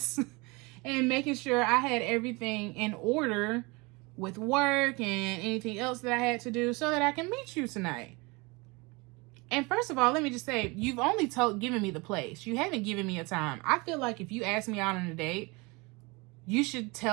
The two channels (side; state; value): left; quieter; 26.4 dB